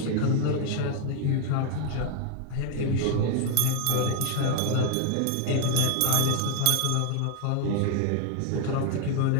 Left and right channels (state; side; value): different; both; correlation 0.00